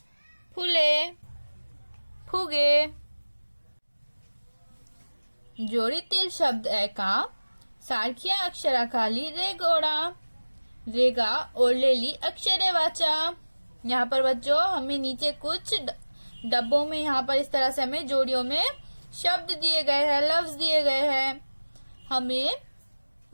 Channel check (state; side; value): inverted; both; correlation -1.00